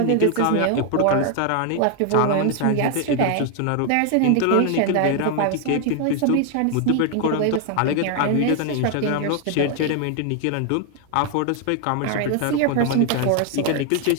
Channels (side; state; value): both; different; correlation 0.01